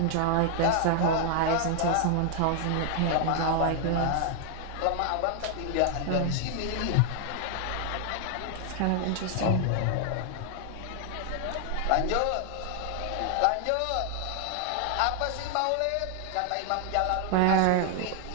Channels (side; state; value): both; different; correlation 0.00